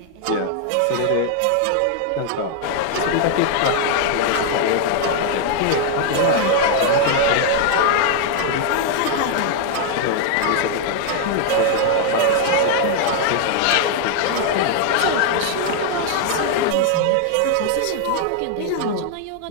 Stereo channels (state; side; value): different; both; correlation 0.00